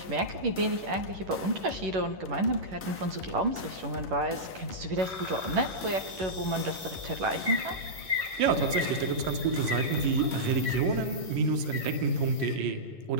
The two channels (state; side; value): late; left; 11 ms